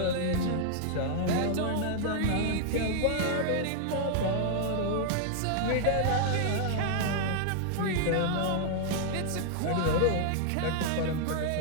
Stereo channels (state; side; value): different; both; correlation -0.01